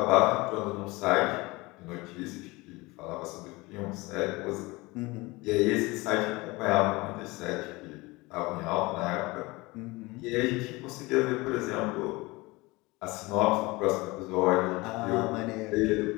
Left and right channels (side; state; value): right; quieter; 22.9 dB